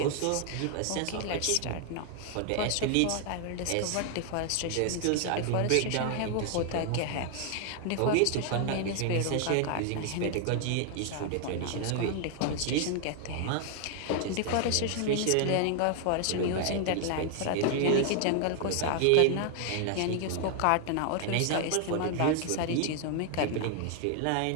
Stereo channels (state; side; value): different; both; correlation 0.00